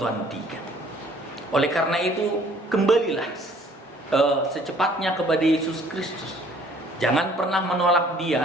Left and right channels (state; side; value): normal; both; correlation 0.57